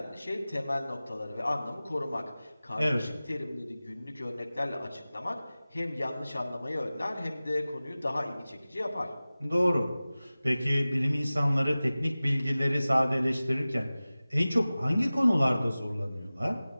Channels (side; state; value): both; inverted; correlation -0.97